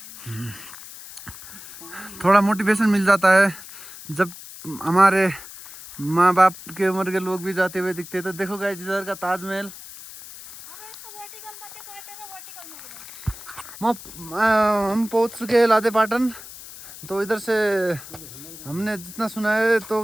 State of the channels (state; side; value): noise; left; hiss, 15 dB below the sound